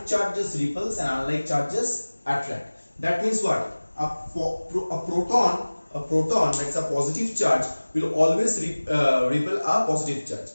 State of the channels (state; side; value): inverted; both; correlation -1.00